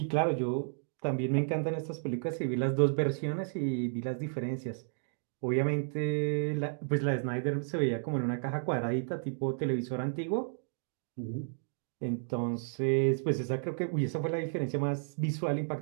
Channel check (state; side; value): silent; left; digital silence